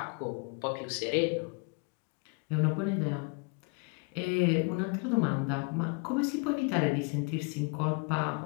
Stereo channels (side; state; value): right; quieter; 33.8 dB